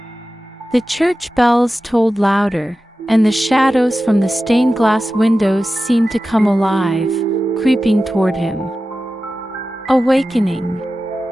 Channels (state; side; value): normal; both; correlation 0.94